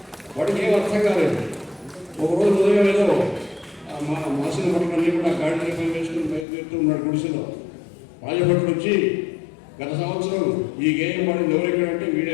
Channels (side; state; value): right; drops out; at 6.5 s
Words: వాడికి ఏం అర్థం కాలేదు. ఒకరోజు ఉదయం ఏదో మాసిన భటులన్నీ కూడా గాడిని పని వేసుకుని బయలుదేరుతూ ఉన్నాడు గుడిసెలో. రాజభటులు వచ్చి గత సంవత్సరం ఈ గేయం పాడింది ఎవరెక్కడంటే